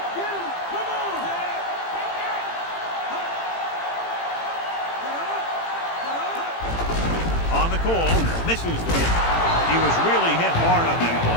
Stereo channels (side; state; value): right; late; 18 ms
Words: get him. Come on. On the call, misses the kick. He was really hit hard on that